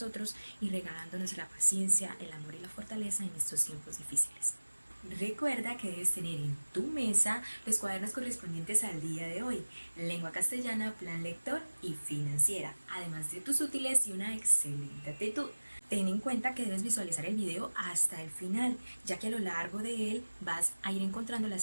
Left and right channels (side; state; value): both; inverted; correlation -1.00